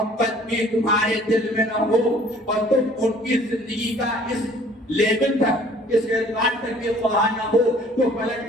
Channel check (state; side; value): normal; both; correlation 0.54